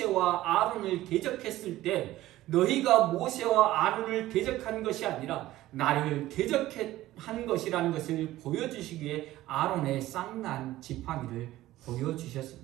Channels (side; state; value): left; quieter; 15.7 dB